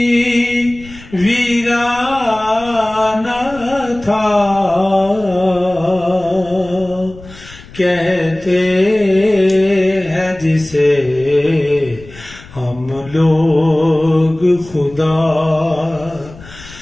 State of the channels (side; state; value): left; noise; rumble, 19 dB below the sound